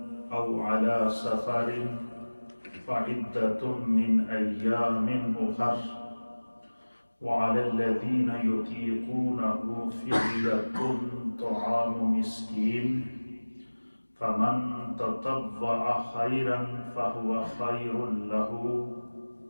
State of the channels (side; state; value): both; inverted; correlation -1.00